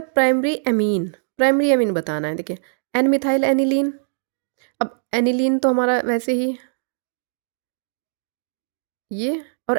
primary amine. Primary amine बताना है। देखिए एन मिथाइल एनिलीन। अब एनिलीन तो हमारा वैसे ही ये,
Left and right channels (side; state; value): left; silent; digital silence